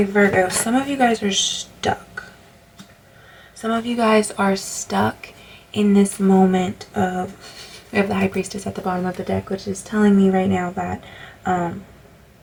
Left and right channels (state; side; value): identical; both; correlation 1.00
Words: Virgo, some of you guys are stuck. Some of you guys are stuck in this moment of, we have the High Priestess at the bottom of the deck, which is telling me right now that